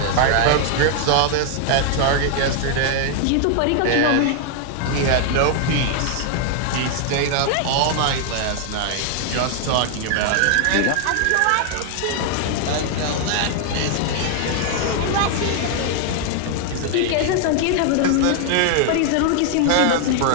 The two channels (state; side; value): different; both; correlation 0.00